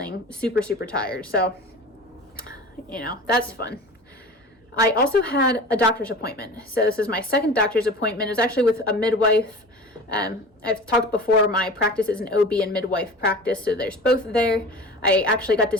super, super tired. So, that's fun. I also had a doctor's appointment. So this is my second doctor's appointment. It was actually with a midwife. I've talked before, my practice is an OB and midwife practice, so there's both there. I actually got to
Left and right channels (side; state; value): both; normal; correlation 0.37